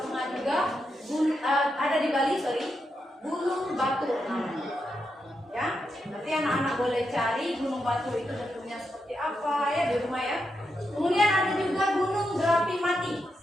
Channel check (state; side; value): normal; both; correlation 0.84